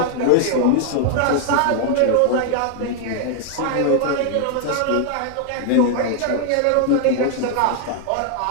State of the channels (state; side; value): different; both; correlation 0.00